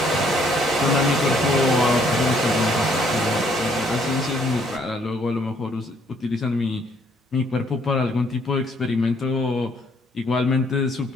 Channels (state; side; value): normal; both; correlation 0.66